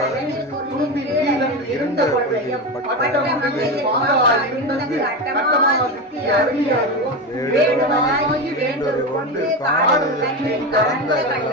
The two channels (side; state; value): both; normal; correlation 0.19